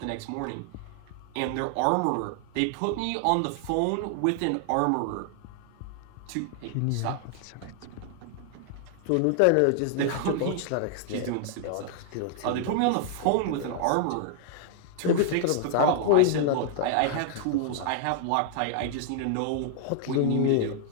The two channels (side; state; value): both; different; correlation 0.00